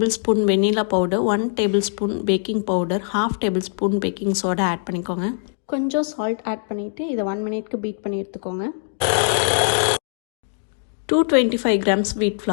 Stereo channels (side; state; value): right; silent; 64 dB below the other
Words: vanilla powder, 1 tablespoon baking powder, half tablespoon baking soda add பண்ணிக்கோங்க. கொஞ்சம் சால்ட் ஆட் பண்ணிவிட்டு இதை 1 மினிட்க்கு பீட் பண்ணி எடுத்துக்கோங்க. 225 grams wheat